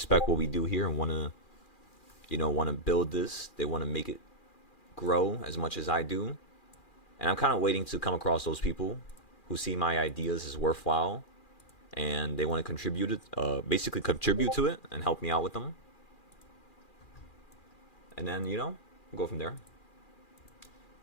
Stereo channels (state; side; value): late; right; 2.4 ms